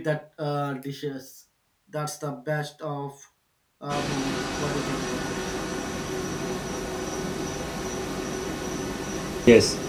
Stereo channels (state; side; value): identical; both; correlation 1.00